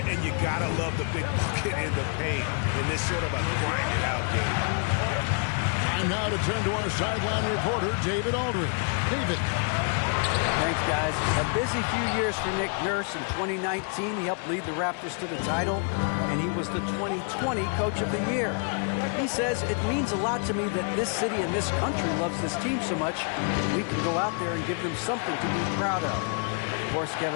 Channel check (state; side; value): quieter; right; 39.9 dB